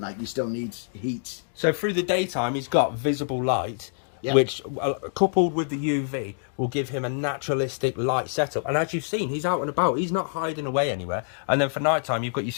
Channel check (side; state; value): right; silent; digital silence